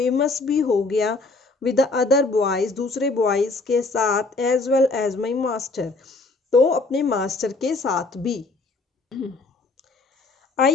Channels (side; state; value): right; quieter; 3.6 dB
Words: भी हो गया. विद द अदर बॉयज, दूसरे बॉयज के साथ. As well as my master, तो अपने मास्टर के साथ भी.